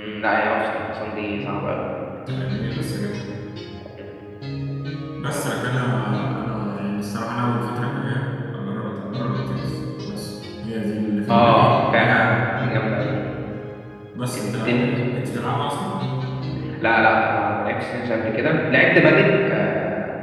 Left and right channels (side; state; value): both; identical; correlation 1.00